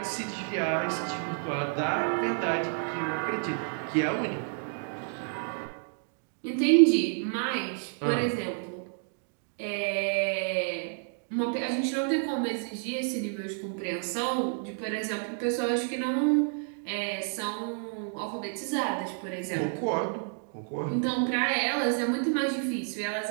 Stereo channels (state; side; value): silent; left; 58 dB below the other